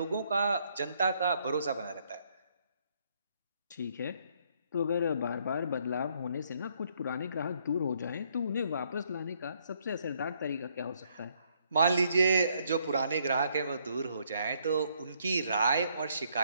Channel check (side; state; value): both; inverted; correlation -0.70